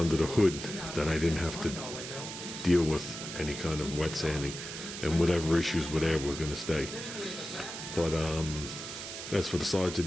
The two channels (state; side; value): noise; right; hiss, 8 dB below the sound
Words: the hood that I didn't have to deal with any kind of wet sanding, and whatever issues were there were going to stay. But as for the sides of